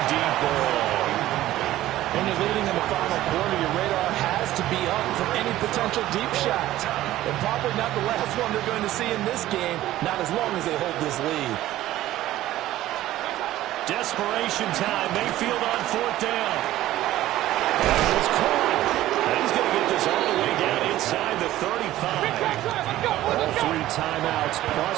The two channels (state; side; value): quieter; left; 14.7 dB